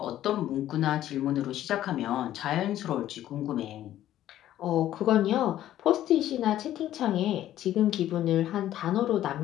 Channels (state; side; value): quieter; right; 12.7 dB